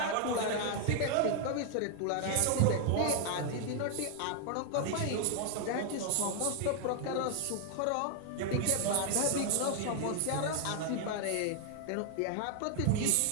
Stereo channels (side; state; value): both; different; correlation 0.00